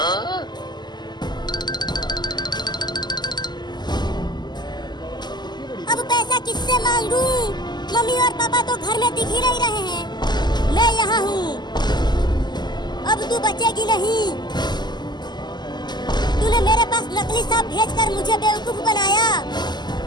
अब पैसा किससे मांगू? मम्मी और पापा तो घर में दिख ही नहीं रहे हैं। मैं यहाँ हूँ, अब तू बचेगी नहीं। तूने मेरे पास नकली सांप भेजकर मुझे बेवकूफ बनाया।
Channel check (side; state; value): right; late; 0.21 ms